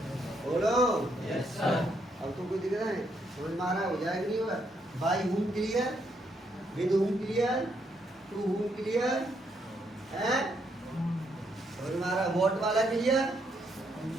बोलो यस सर। अब तो कोई दिख रहा है? समझ में आ रहा है? हो जाएगा नहीं होगा? By whom clear, with whom clear, to whom clear है? समझ में आ रहा है? वॉट वाला क्लियर?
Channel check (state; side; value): normal; both; correlation 0.75